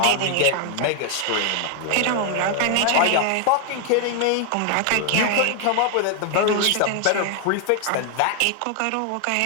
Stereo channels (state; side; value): different; both; correlation 0.00